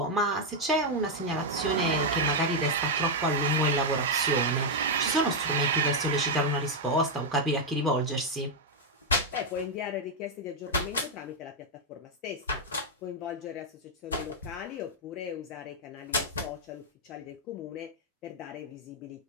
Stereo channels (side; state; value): both; normal; correlation 0.00